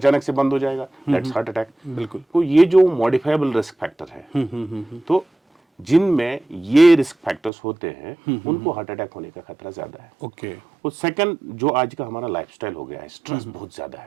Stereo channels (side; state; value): left; drops out; at 7.5 s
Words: से बंद हो जाएगा, दैट्स हार्ट अटैक। बिल्कुल तो ये जो मॉडिफाइबल रिस्क फैक्टर है, तो जिनमें ये रिस्क फैक्टर्स होते हैं उनको हार्ट अटैक होने का खतरा ज्यादा है। ओके और सेकंड, जो आज का हमारा लाइफस्टाइल हो गया है, स्ट्रेस बहुत ज्यादा